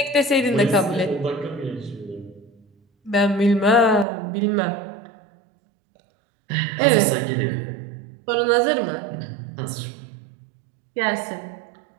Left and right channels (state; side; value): drops out; left; at 4.0 s